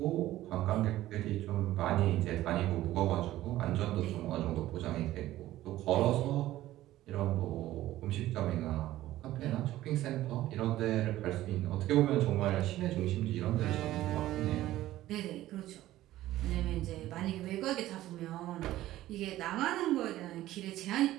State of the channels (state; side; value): quieter; left; 15.0 dB